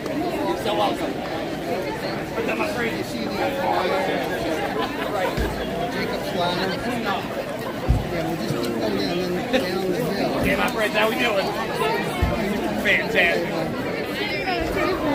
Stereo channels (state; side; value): identical; both; correlation 1.00